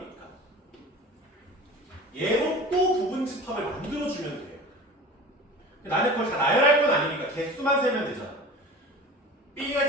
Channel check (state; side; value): normal; both; correlation 0.37